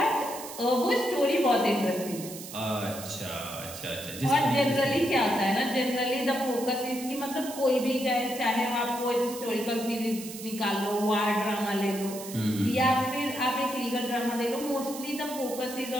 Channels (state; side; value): noise; right; hiss, 12 dB below the sound